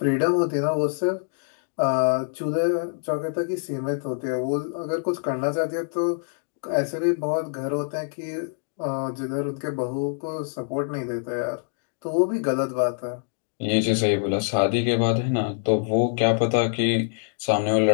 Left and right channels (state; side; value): silent; right; digital silence